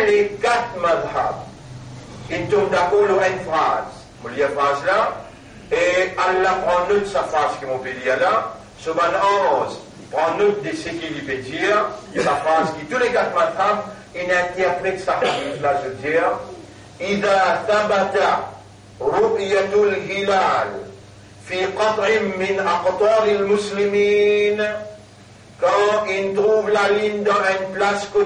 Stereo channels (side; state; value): both; identical; correlation 1.00